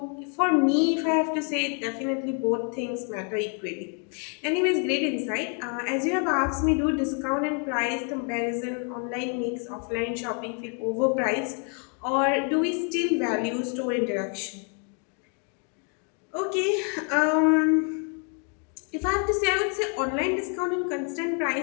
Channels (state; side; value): quieter; right; 39.0 dB